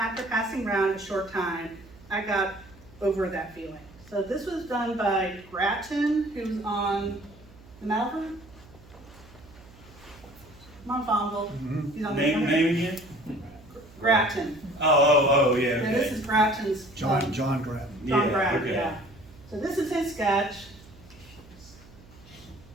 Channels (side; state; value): right; noise; hum, 22 dB below the sound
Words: passing around a short time, I got over that feeling. So this was done by Grattan, who's on the Naval. Monfonville. He's on the Name again? Grattan. Oh, yeah, And this okay. is Grattan's. John Grattan. John Yeah, Grattan, okay. yeah. So this is his sketch.